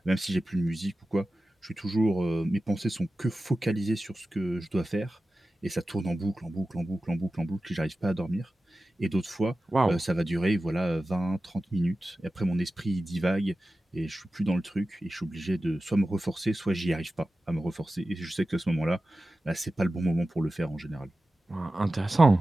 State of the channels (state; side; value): normal; both; correlation 0.95